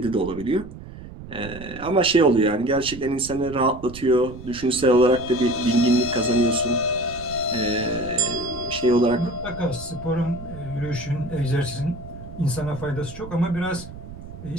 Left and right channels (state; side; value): noise; right; rumble, 14 dB below the sound